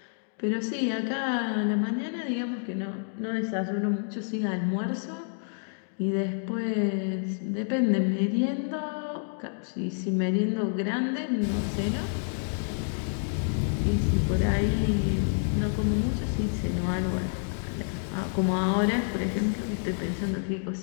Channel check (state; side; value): silent; right; digital silence